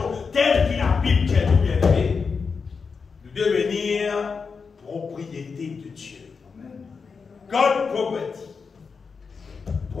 telle qu'il a Bible qui est tout bien aimé, de devenir propriété de Dieu. God property.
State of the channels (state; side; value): quieter; right; 5.3 dB